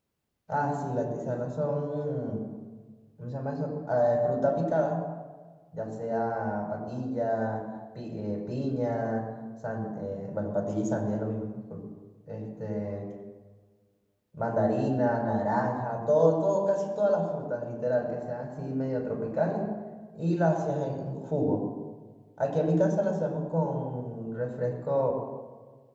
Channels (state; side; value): identical; both; correlation 1.00